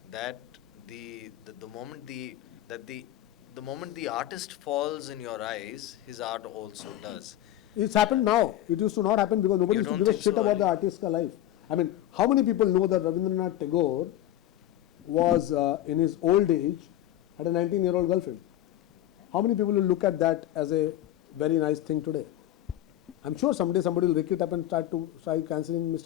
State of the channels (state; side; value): quieter; right; 13.3 dB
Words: that the moment the moment the artist falls in your eyes, his art also does. It's happened now. It used to not happen because nobody used to give a shit about the artist's life. I mean, how many people know that Rabindranath Tagore was in his old age had a 19-year-old girlfriend? How many people will look at that as a very nice thing today? I'm sure someday somebody will pick it up and try cancelling